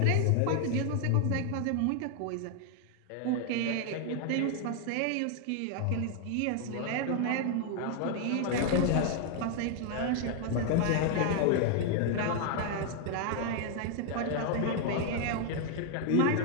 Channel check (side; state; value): both; different; correlation 0.00